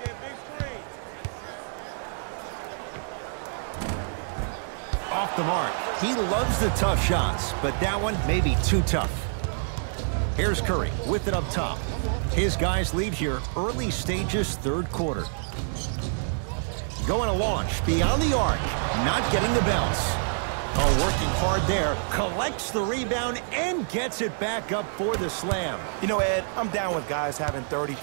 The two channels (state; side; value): silent; left; digital silence